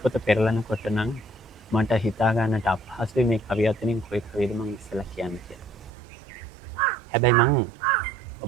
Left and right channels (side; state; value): left; drops out; at 5.9 s